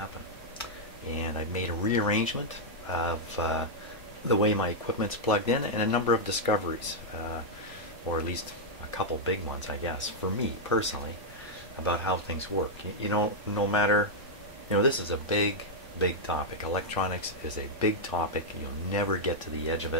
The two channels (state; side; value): normal; both; correlation -0.04